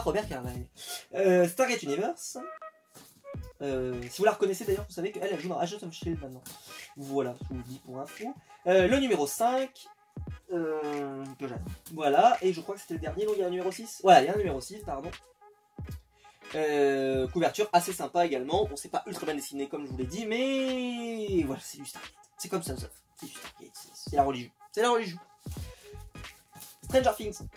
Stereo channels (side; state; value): both; identical; correlation 1.00